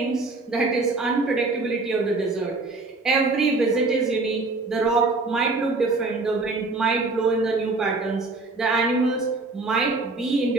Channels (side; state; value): left; quieter; 3.5 dB